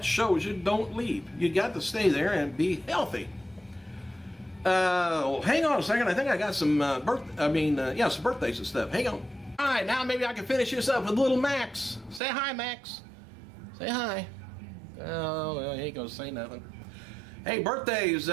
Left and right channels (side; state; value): left; drops out; at 12.2 s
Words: shows you don't leave. You got to stay there and be healthy. Hang on a second. I think I got some some birthdays and stuff. Hang on. All right, now maybe I can finish this up with little Max. Say hi, Max. Say hi. Oh, well, he ain't gonna say nothing. Hey, birthdays.